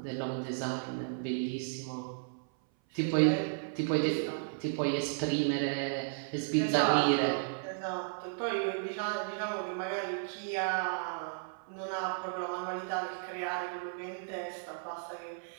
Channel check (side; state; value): left; silent; 55 dB below the other